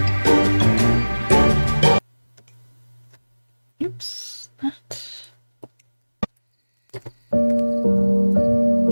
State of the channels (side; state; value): both; inverted; correlation -1.00